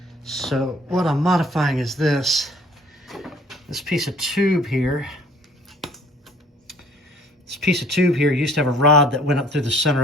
So what I'm modifying is this piece of tube here. This piece of tube here used to have a rod that went up through the center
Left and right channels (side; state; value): both; normal; correlation 0.55